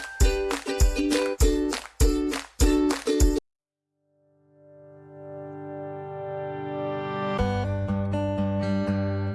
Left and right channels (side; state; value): both; identical; correlation 1.00